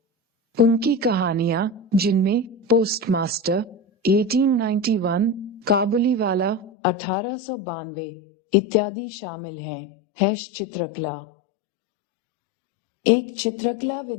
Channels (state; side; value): drops out; right; at 6.7 s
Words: उनकी कहानियां, जिनमें पोस्टमास्टर 1891, काबुलीवाला 1892 इत्यादि शामिल हैं। चित्रकला। एक चित्रकला